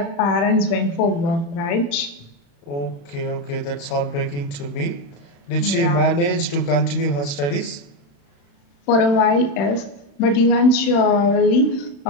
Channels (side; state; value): right; late; 35 ms